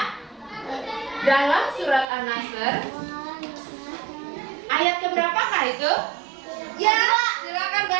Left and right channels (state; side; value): drops out; left; at 2.1 s